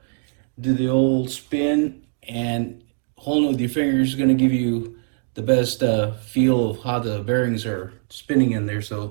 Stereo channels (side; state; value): left; silent; digital silence